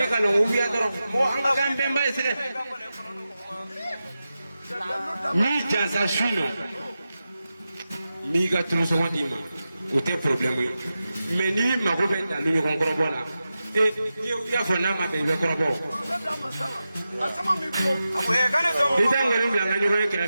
ka na o wuya dɔrɔn mɔgɔ an ka kan bɛnba ye sɛgɛ n'i jansa su in nɔ n b'i ka tulusɔngɔ d'i ma o tɛ problème ye mɛ n'i mago bɛ dalu ɲɔgɔn kɔrɔbɔ la i y'a fɔ n'a ma bɛn i bɛ kɔrɔbɔ i tɛ nkɔni bila n ka ɲɔgɔn ye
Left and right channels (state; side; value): inverted; both; correlation -0.92